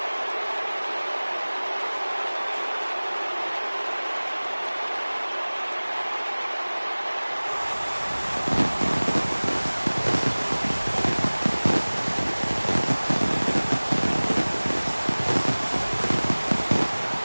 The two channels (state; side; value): inverted; both; correlation -1.00